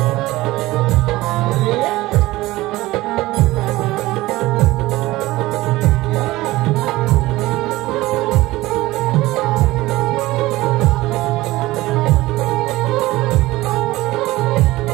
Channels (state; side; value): quieter; left; 18.4 dB